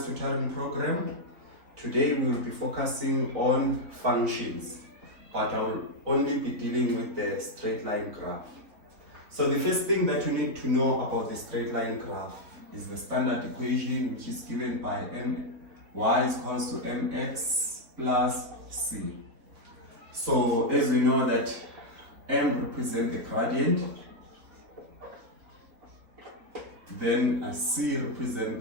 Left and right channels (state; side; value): late; left; 3.6 ms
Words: Tutoring Program. Today we will be focusing on functions, but I will only be dealing with the straight line graph. So the first thing that you need to know about the straight line graph is the standard equation, which is given by y is equals to mx plus c. So as we know that m represents the gradient, then c represents